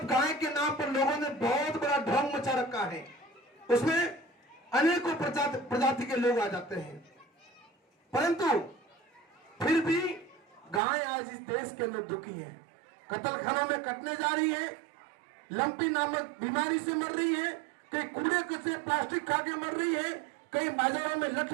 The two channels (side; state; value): left; drops out; at 10.8 s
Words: गाय के नाम पर लोगों ने बहुत बड़ा ढोंग मचा रखा है, उसमें अनेकों प्रजाति के लोग आ जाते हैं, परंतु फिर भी गाय आज इस देश के अंदर दुखी है, कत्लखानों में कटने जा रही है, लंपी नामक बीमारी से मर रही है, कई कूड़े से प्लास्टिक खा के मर रही है, कई बाजारों में लठ